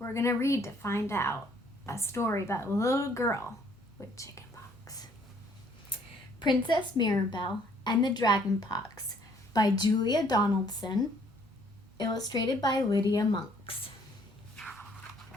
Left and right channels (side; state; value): right; noise; hum, 28 dB below the sound